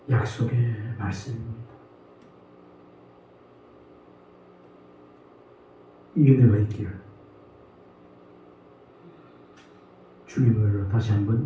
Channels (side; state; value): both; identical; correlation 1.00